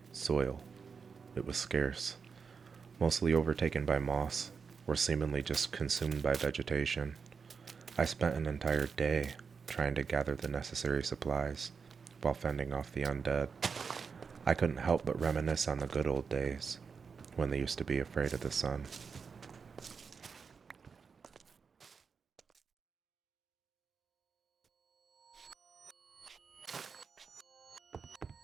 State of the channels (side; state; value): left; quieter; 5.6 dB